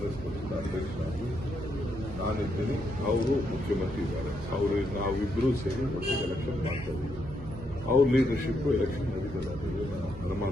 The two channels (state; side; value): noise; right; hum, 12 dB below the sound